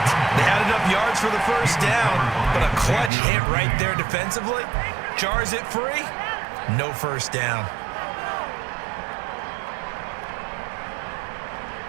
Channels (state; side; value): drops out; left; at 3.1 s